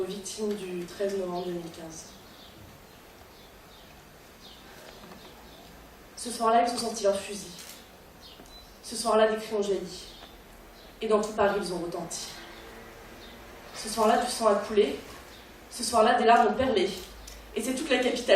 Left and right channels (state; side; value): identical; both; correlation 1.00